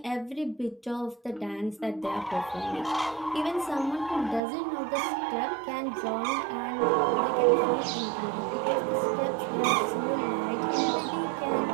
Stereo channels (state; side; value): drops out; left; at 4.4 s